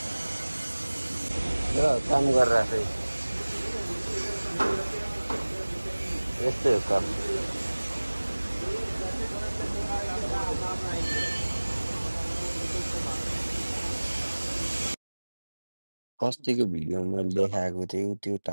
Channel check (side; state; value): both; inverted; correlation -1.00